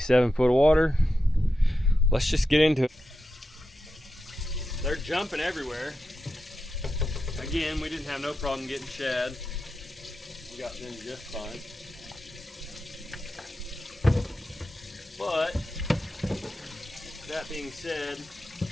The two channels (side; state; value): both; normal; correlation 0.89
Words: foot of water. Let's just get into it. They're jumping everywhere. Again, we didn't have no problem getting shad. We got them just fine. But, that being said,